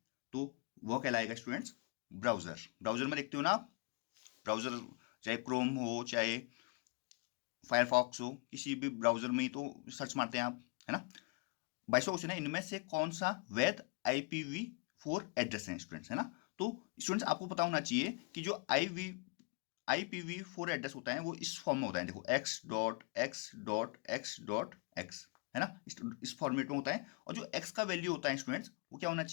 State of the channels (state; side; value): quieter; right; 30.8 dB